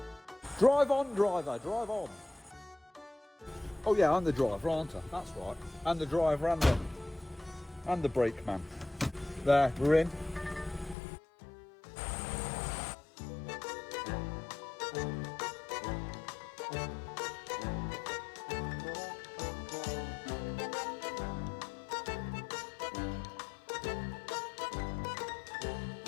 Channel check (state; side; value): drops out; right; at 11.0 s